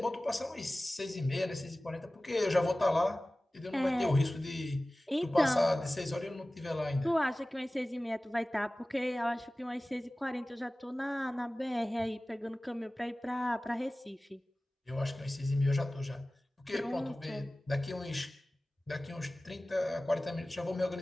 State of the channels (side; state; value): both; normal; correlation 0.97